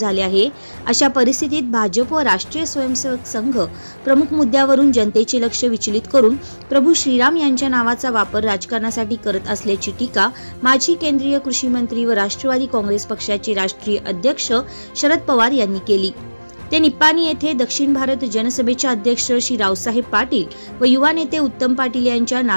आहे। अशा परिस्थितीत भाजप व राष्ट्रीय स्वयंसेवक संघ प्रमुख मुद्द्यावरून जनतेचे लक्ष विचलित करून प्रभू श्रीराम यांच्या नावाचा वापर राजकारणासाठी करत असल्याची टीका माजी केंद्रीय कृषी मंत्री व राष्ट्रवादी काँग्रेस पक्षाचे राष्ट्रीय अध्यक्ष शरद पवार यांनी केली। ते निप्पाणी येथे दक्षिण भारत जनसभेचे अध्यक्ष श्री रावसाहेब पाटील व युवा नेते उत्तम पाटील यांच्या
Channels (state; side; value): inverted; both; correlation -1.00